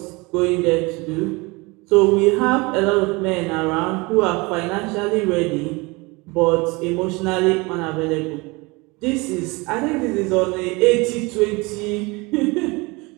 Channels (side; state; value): left; quieter; 25.5 dB